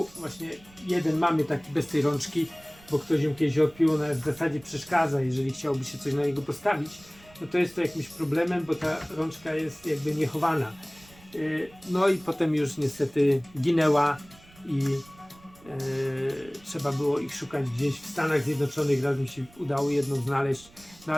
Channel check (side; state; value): right; noise; rumble, 25 dB below the sound